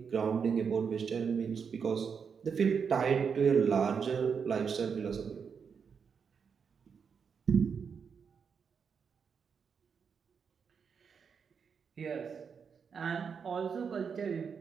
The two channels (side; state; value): left; quieter; 6.3 dB